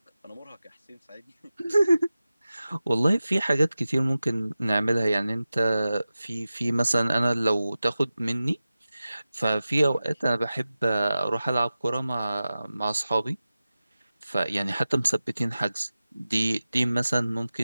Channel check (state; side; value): inverted; both; correlation -0.95